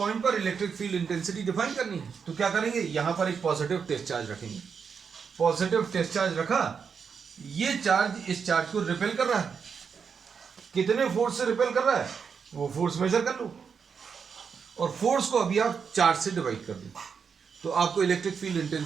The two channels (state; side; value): quieter; left; 6.3 dB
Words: पर इलेक्ट्रिक फील्ड इंटेंसिटी डिफाइन करनी है तो क्या करेंगे? यहां पर एक पॉजिटिव टेस्ट चार्ज रखेंगे. पॉजिटिव टेस्ट चार्ज रखा, ये चार्ज इस चार्ज को रिपेल कर रहा है. कितने फोर्स से रिपेल कर रहा है वो फोर्स मेजर कर लो और फोर्स को अभी आप चार्ज से डिवाइड कर दो तो आपको electric field